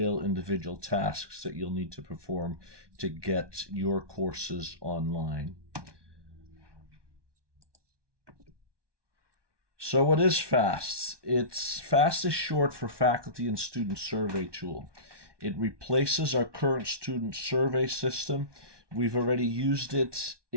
individual tasks that you'll need to perform to get your courses online. So what is FAST? FAST is short for Faculty and Student Survey Tool. It replaces our current student survey system. We've already used it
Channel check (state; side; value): late; left; 1.2 ms